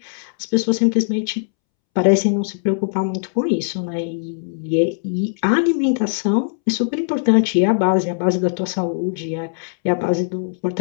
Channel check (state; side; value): silent; right; 66 dB below the other